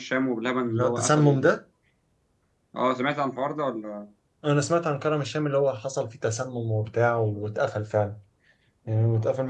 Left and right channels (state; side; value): identical; both; correlation 1.00